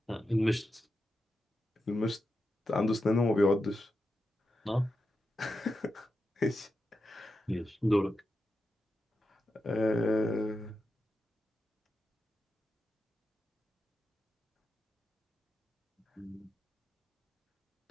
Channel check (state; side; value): normal; both; correlation 0.89